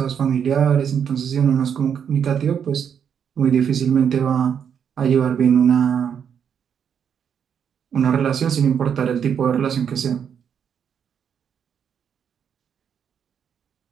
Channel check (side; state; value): left; quieter; 7.9 dB